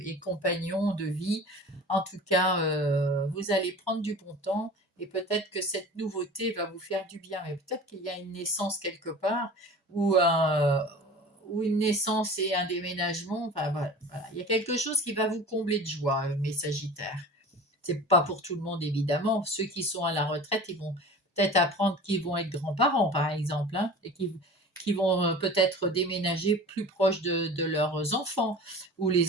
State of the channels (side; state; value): both; normal; correlation 0.38